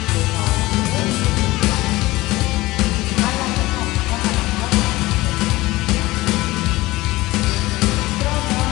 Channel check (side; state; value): right; quieter; 19.3 dB